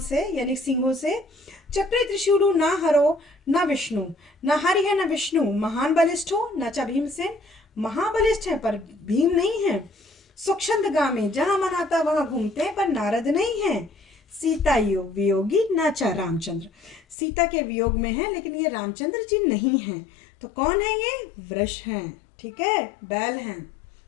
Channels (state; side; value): drops out; right; at 17.2 s